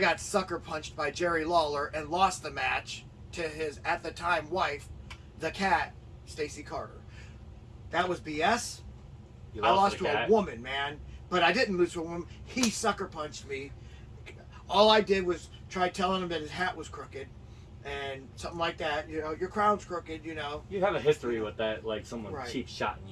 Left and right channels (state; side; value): identical; both; correlation 1.00